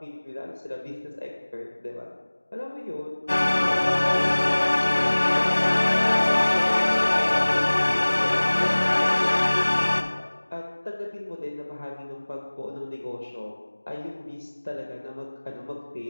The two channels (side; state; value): both; inverted; correlation -1.00